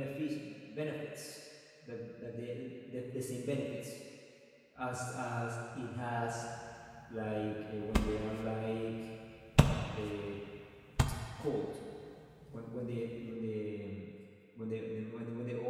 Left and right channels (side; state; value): both; identical; correlation 1.00